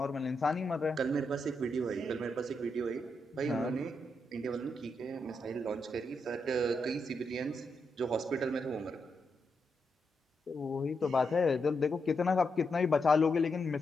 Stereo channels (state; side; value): normal; both; correlation 0.83